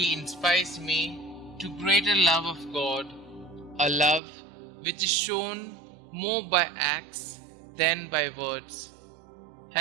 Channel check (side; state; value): left; drops out; at 4.2 s